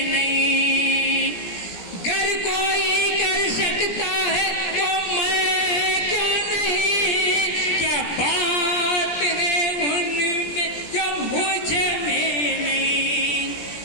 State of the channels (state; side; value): late; right; 17 ms